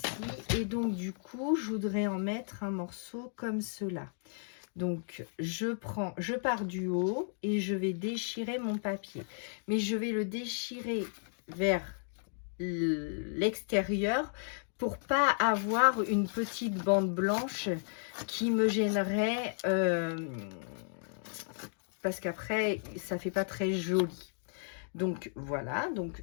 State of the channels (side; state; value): right; silent; digital silence